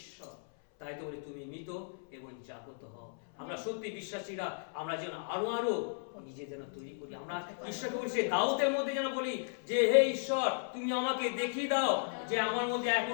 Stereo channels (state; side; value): silent; right; 54 dB below the other